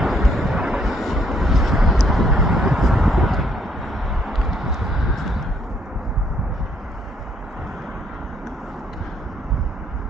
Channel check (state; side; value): normal; both; correlation 0.68